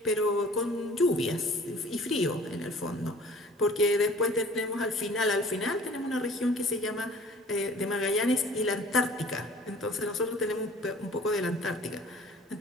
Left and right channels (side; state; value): both; normal; correlation 0.49